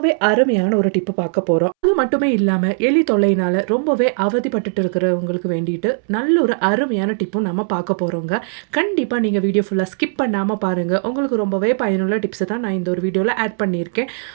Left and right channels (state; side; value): silent; left; 67 dB below the other